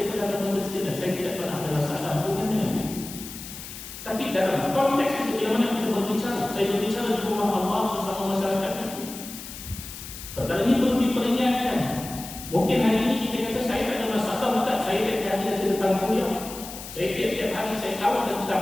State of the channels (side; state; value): left; noise; hiss, 12 dB below the sound